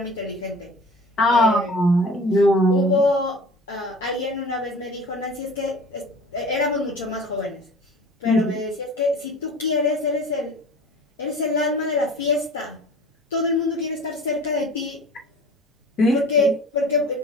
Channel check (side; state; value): both; normal; correlation 0.41